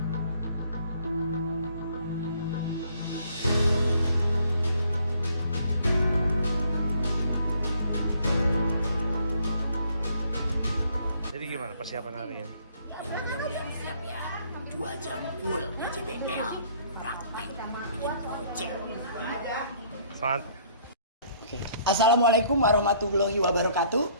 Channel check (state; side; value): inverted; both; correlation -0.62